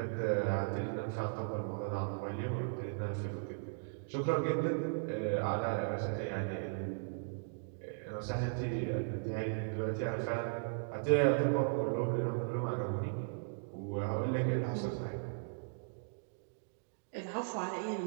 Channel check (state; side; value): silent; left; digital silence